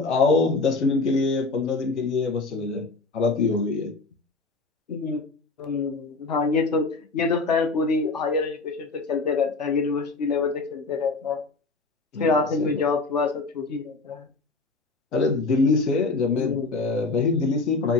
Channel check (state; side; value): quieter; right; 3.7 dB